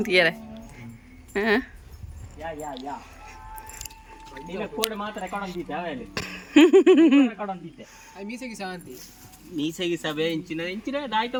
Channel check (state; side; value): identical; both; correlation 1.00